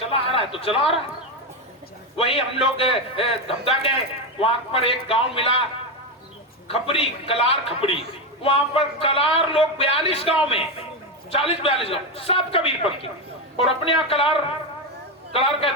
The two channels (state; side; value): normal; both; correlation 0.11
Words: आ रहा है तो चला आ रहा है। वही हम लोग धमदा गए, वहां पर एक गांव मिला खपरी, कलार खपरी। वहां पर कलार लोग 42 गांव में, 40-42 गांव सब कबीरपंथी। और अपने यहाँ कलार कहते